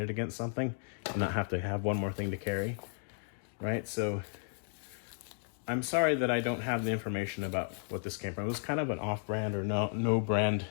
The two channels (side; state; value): right; silent; 55 dB below the other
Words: against something and not have to have one more thing to carry, right? So I'm sorry that I don't have the information about what this came from. It was kind of an off-brand or no brand